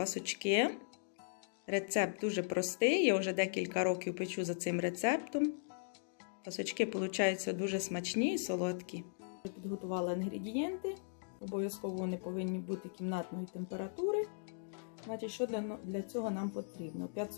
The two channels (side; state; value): right; silent; digital silence